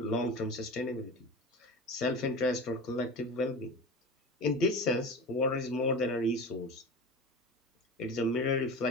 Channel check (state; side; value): normal; both; correlation 0.32